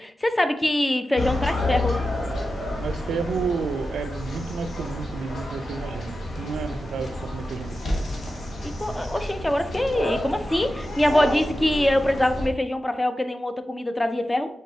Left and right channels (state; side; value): normal; both; correlation 0.92